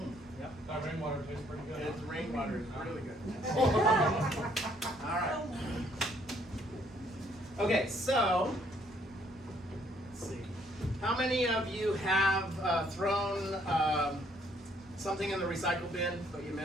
Yep. That rainwater tastes pretty good. It's rainwater, it's really good. All right. Okay, so let's see. How many of you have thrown something in the recycle bin, but you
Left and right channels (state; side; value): normal; both; correlation 0.66